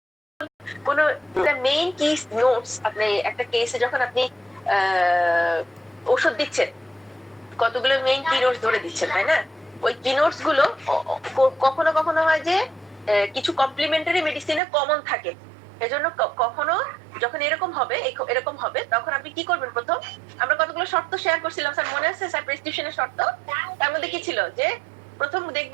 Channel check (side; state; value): left; drops out; at 14.6 s